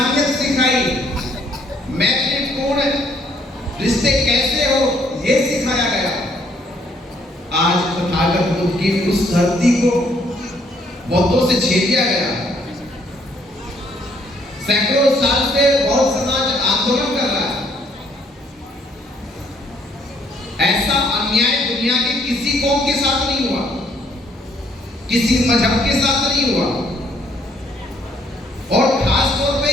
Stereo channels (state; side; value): normal; both; correlation 0.67